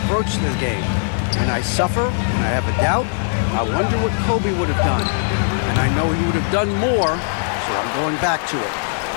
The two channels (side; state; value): right; silent; digital silence